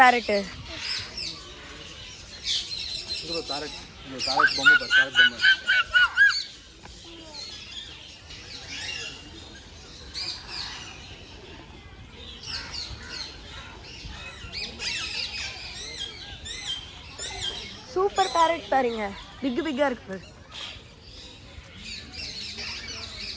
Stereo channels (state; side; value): identical; both; correlation 1.00